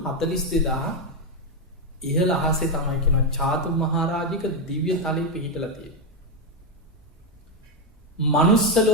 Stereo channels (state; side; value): normal; both; correlation 0.05